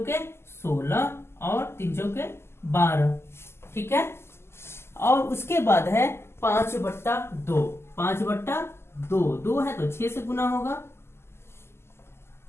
16 और 3 चौके 12, ठीक है। और उसके बाद है 5/2, 5/2, 2 है तो 6 से गुना होगा,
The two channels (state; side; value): late; right; 0.12 ms